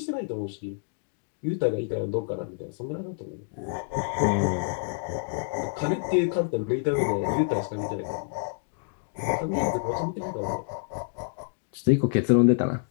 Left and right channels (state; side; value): silent; right; digital silence